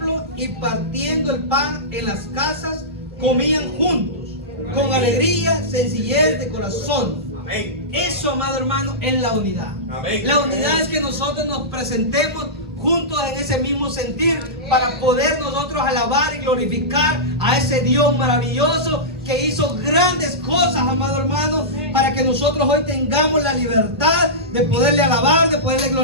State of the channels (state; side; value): normal; both; correlation -0.16